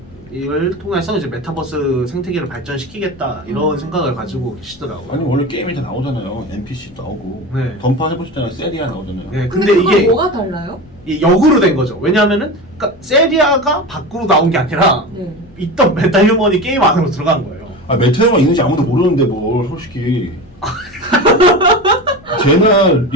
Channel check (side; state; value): left; noise; rumble, 25 dB below the sound